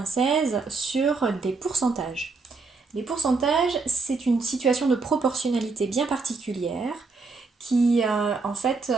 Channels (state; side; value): quieter; left; 4.1 dB